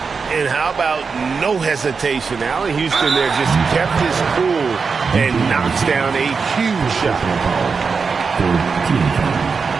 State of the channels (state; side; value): quieter; left; 5.2 dB